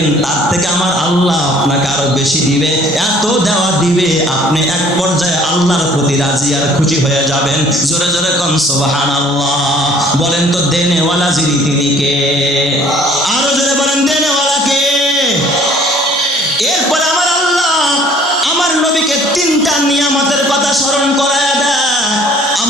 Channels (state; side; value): normal; both; correlation 0.55